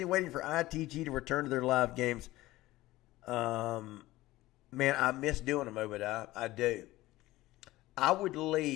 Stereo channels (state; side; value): quieter; right; 17.5 dB